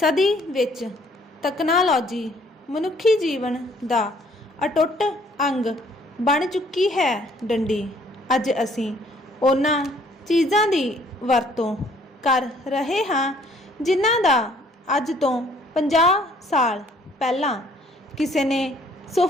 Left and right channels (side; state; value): both; normal; correlation 0.61